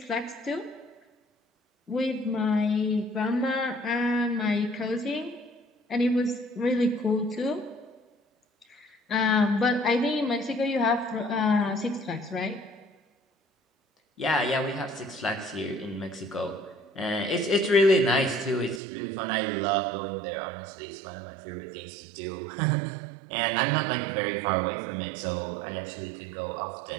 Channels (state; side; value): drops out; left; at 18.8 s